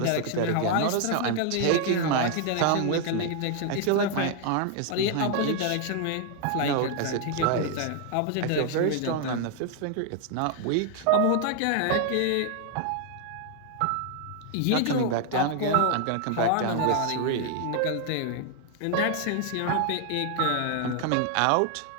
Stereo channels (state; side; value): different; both; correlation 0.00